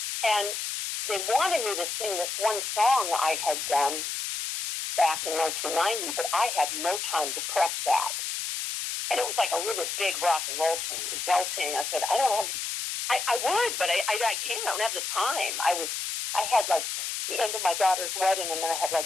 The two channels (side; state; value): left; noise; hiss, 3 dB below the sound